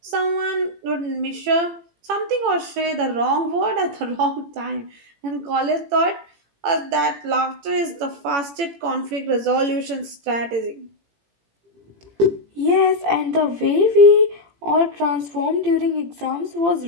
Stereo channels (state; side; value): late; left; 18 ms